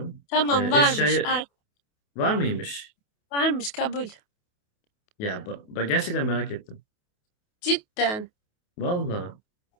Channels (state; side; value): late; right; 28 ms